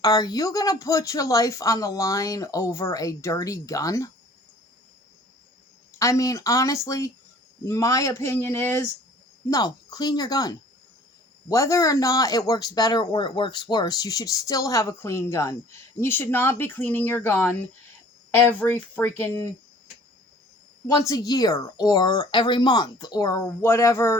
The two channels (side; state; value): both; normal; correlation 0.51